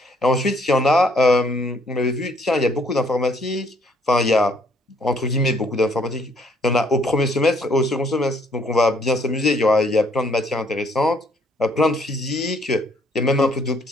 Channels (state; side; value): normal; both; correlation 0.66